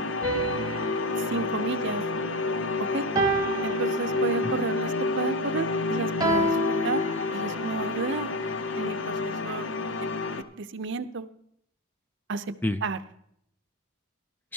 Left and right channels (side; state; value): both; normal; correlation 0.14